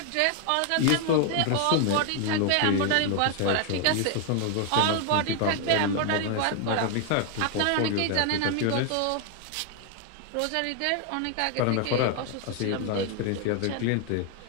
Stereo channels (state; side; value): different; both; correlation 0.00